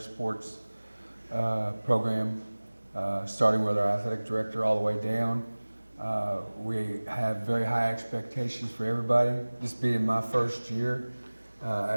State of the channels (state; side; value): inverted; both; correlation -1.00